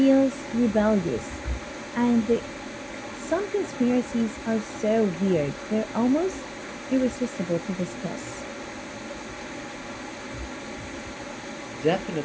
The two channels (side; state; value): both; identical; correlation 1.00